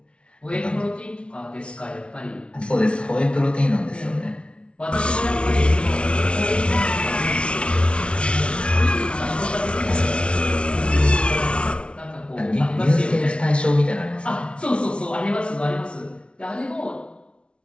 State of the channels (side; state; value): right; late; 0.059 ms